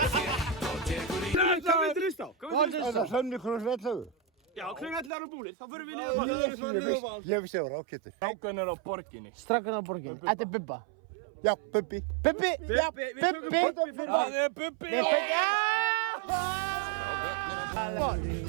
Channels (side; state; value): left; drops out; at 5.1 s